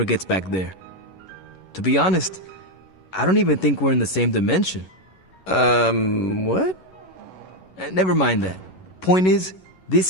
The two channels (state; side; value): late; right; 11 ms